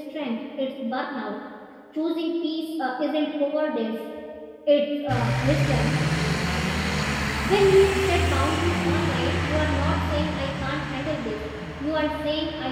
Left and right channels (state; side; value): identical; both; correlation 1.00